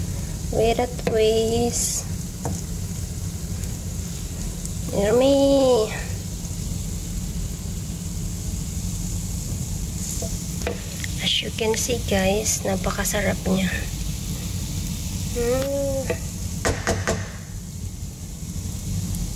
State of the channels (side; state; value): both; identical; correlation 1.00